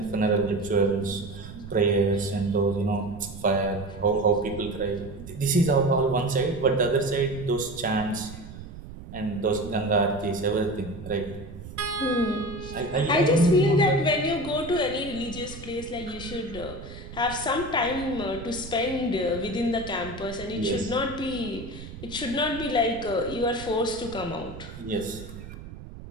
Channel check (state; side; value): noise; right; rumble, 13 dB below the sound